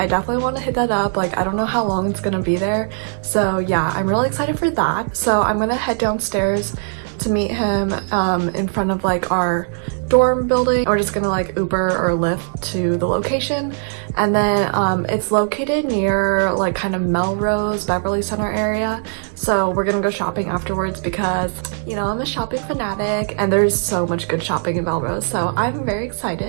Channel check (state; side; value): silent; left; digital silence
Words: definitely want to hit that up. Like I don't know how long it's gonna be there. So yeah, I'm really excited for that. So I'm gonna head downstairs to meet him in front of like our dorm building. We're just gonna like Uber or Lyft to the location, and then it's located near like kind of Melrose, Beverly Center area. So we're gonna go shopping afterwards because, you know, I'm a shopping fanatic and there's so much good shopping in Melrose. So I'm very